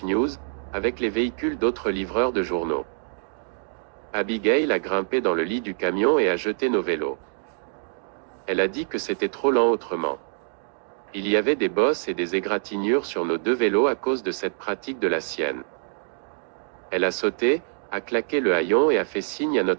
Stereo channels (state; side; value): silent; left; digital silence